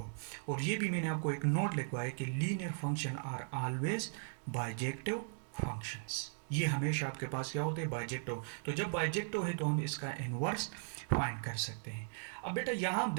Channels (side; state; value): left; silent; digital silence